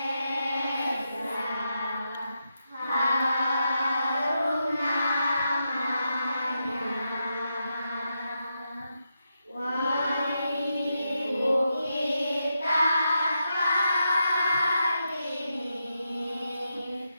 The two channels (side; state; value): both; inverted; correlation -0.85